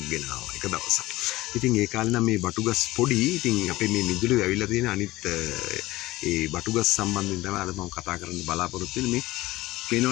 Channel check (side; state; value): right; quieter; 18.3 dB